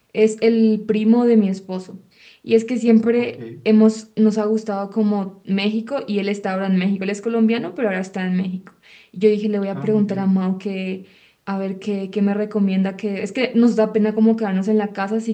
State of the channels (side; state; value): both; identical; correlation 1.00